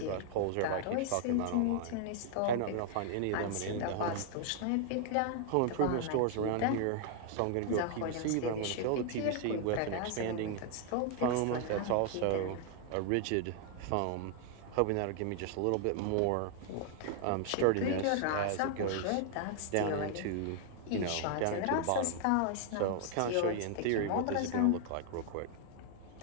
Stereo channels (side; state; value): both; different; correlation 0.00